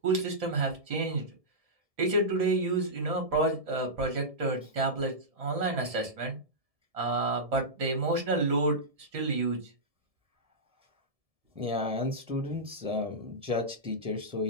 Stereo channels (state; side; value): late; left; 1.7 ms